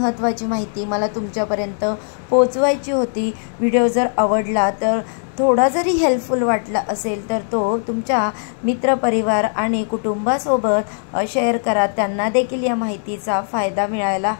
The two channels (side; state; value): right; silent; 66 dB below the other